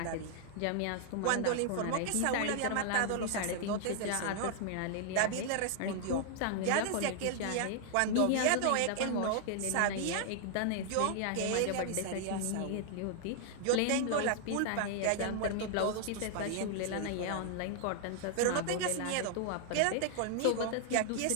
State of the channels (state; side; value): different; both; correlation 0.00